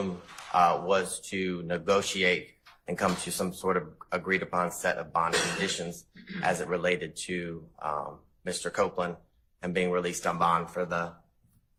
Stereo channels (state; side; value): identical; both; correlation 1.00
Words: was to negotiate and come to some sort of agreed upon set of bond conditions as it related to Mr. Copeland and being released on bond for the